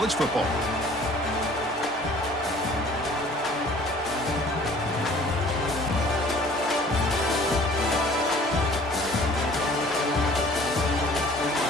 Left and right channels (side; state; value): both; normal; correlation 0.51